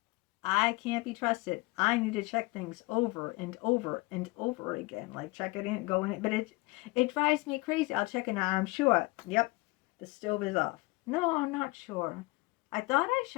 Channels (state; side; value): quieter; right; 23.4 dB